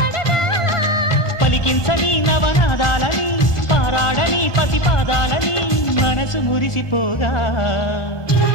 పలికించని నవనాదాలని పారాడని పసిపాదాలని మనసు మురిసిపోగా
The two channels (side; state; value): right; late; 1.2 ms